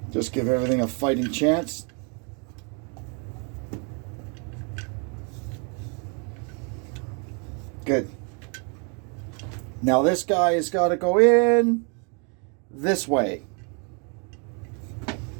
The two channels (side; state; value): left; quieter; 36.5 dB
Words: Just give everything a fighting chance. Good. Now this guy has got to go in this way.